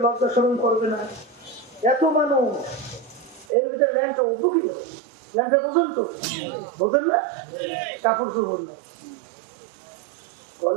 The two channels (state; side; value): drops out; left; at 3.5 s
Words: লজ্জা শরম করবে না? এত মানুষ, এর ভিতরে ল্যাংটা উঠবো কি? ল্যাংটা পর্যন্ত বোঝেন না, কাপড় চোপড় না।